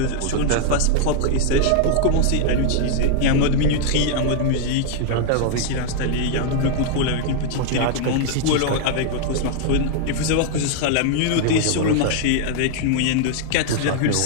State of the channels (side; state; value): both; different; correlation 0.00